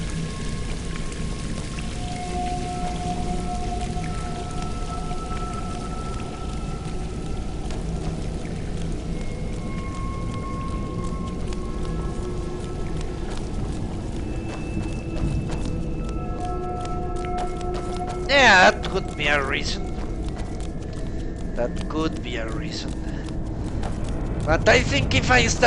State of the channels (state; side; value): identical; both; correlation 1.00